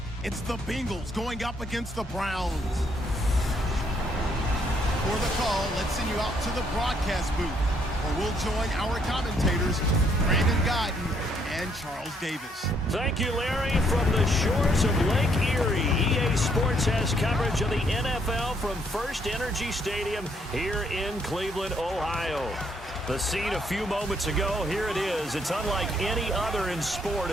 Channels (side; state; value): both; normal; correlation 0.70